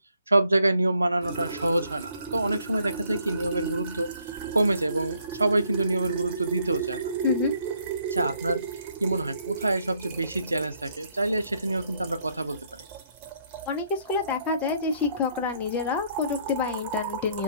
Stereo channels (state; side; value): inverted; both; correlation -0.68